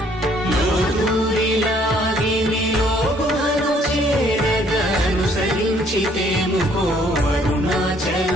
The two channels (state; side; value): normal; both; correlation 0.63